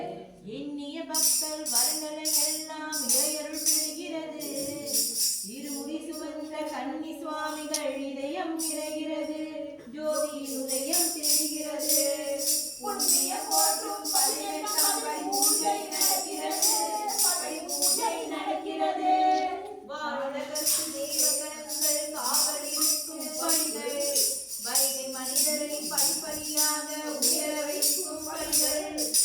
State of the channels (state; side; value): identical; both; correlation 1.00